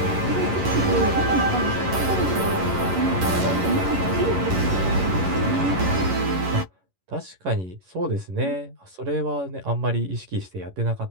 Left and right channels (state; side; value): late; left; 11 ms